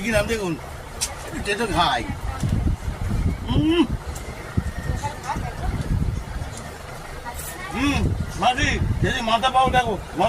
কিনা, দেখুন তেতো খাই। মাঝি যদি মাথা পাও দেখো,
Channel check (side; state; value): both; identical; correlation 1.00